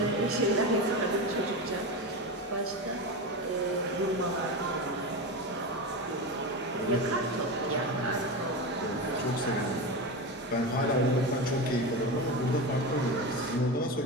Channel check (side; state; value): both; normal; correlation 0.21